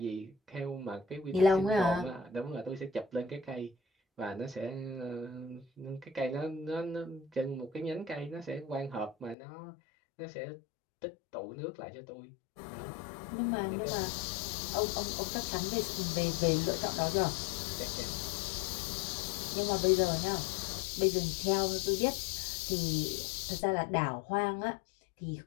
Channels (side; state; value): right; drops out; at 9.3 s